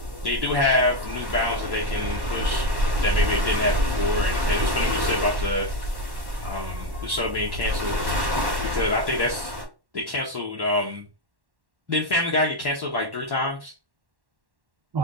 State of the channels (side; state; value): left; late; 1.1 ms